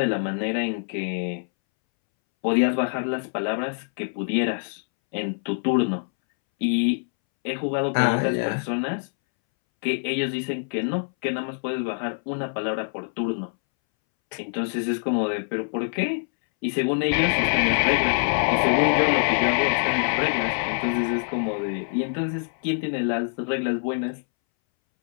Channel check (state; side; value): silent; right; 62 dB below the other